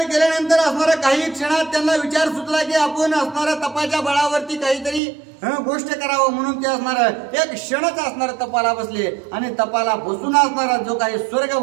केल्यानंतर असणारा काही क्षणात त्यांना विचार सुचला की आपण असणारा तपाच्या बळावरती काहीतरी गोष्ट करावं. म्हणून ते असणार एक क्षणच असणार तपाला बसले, आणि तपाला बसून असणारा जो काही स्वर्ग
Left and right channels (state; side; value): drops out; left; at 5.0 s